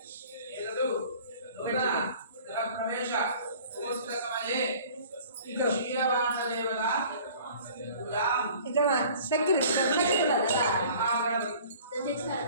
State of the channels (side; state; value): both; inverted; correlation -0.48